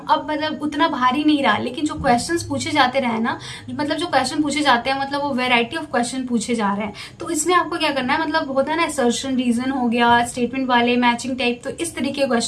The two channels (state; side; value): identical; both; correlation 1.00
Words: अब मतलब उतना भारी नहीं रहा, लेकिन जो क्वेश्चंस पूछे जाते रहे ना, मतलब जो क्वेश्चन पूछे जाते हैं मतलब वो वैरायटी ऑफ क्वेश्चन पूछे जा रहे हैं, तो इसमें आपको क्या करना है, मतलब होता है ना असर्शन रीजन हो गया, स्टेटमेंट वाले, मैचिंग टाइप, तो इस तरीके के